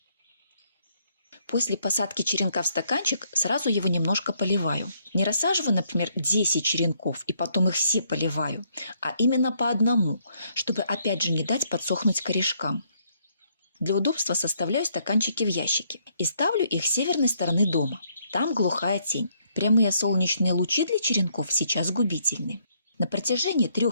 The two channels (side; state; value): both; inverted; correlation -0.70